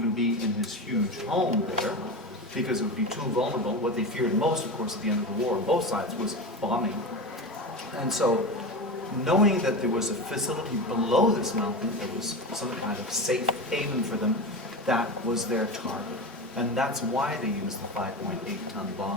be in his huge home there, because it would be too vulnerable. What they feared most, of course, at the end of the war on both sides was bombing. And so, knowing that there was a facility below this mountain that was some kind of safe haven for them, that was their target. And that's why they used the 5.8-ton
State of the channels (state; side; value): normal; both; correlation 0.23